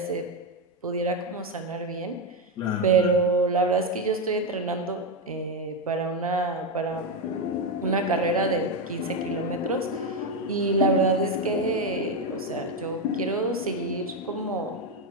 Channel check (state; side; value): normal; both; correlation 0.08